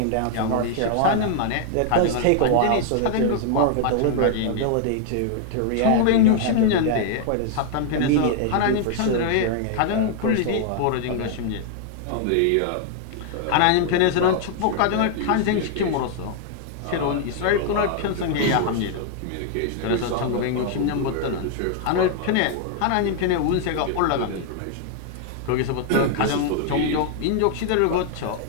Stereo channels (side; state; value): both; different; correlation 0.00